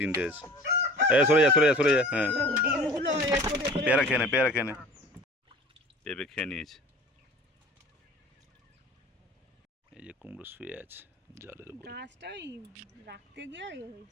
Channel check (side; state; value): both; normal; correlation 0.44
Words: আছে। সরে যা সরে যা সরে যা। হ্যাঁ, পেয়ারা খেয়ে নে, পেয়ারা খেয়ে নে। পেঁপে খেয়ে নিয়েছে। এই যে কুমড়ো শুয়ে আছে জলের উপরে। গাছটাই রাখতে গিয়ে